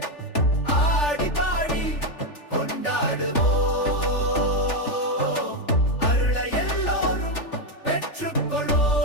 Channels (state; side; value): late; right; 3.4 ms